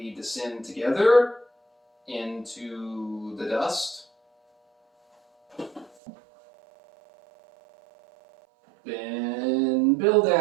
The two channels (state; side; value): drops out; left; at 5.9 s